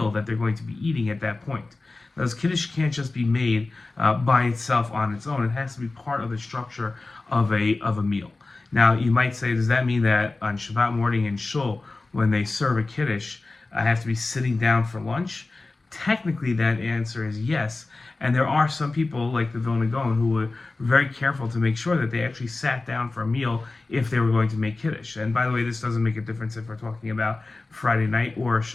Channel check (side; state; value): right; quieter; 3.4 dB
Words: that they're going to be eating at that point. Now, this Kiddish can't just be made by itself on its own. It has to be part of the structure of a meal. Now, you might say, does that mean that on Shabbat morning in Shul, when they serve a Kiddish, I have to be sitting down for lunch? Technically, that answer is yes. And there are some people, like the Vilna Gaon, who were very careful to make sure that they actually sat down for a meal if they were going to make Kiddish. And by the way, this doesn't make a difference if we're talking about Friday night or